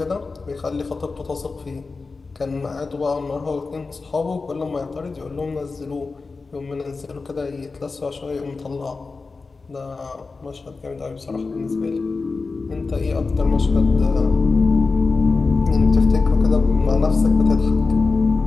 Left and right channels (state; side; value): quieter; right; 4.1 dB